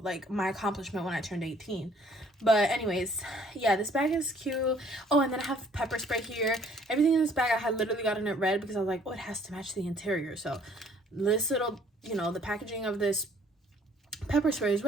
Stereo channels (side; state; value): both; normal; correlation 0.59